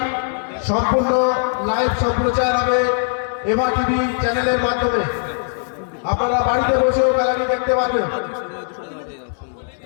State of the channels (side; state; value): right; silent; digital silence